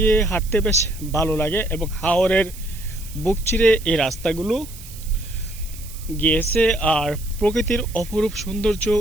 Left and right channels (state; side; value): noise; right; hiss, 17 dB below the sound